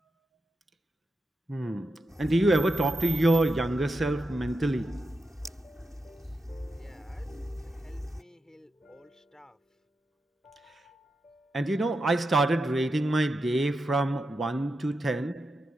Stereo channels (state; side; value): normal; both; correlation 0.88